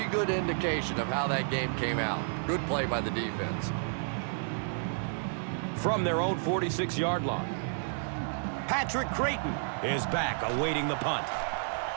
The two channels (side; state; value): left; silent; digital silence